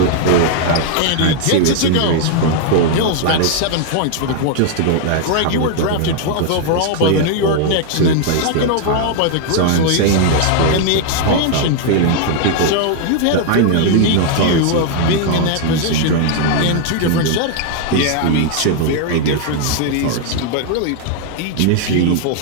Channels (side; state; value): both; different; correlation 0.00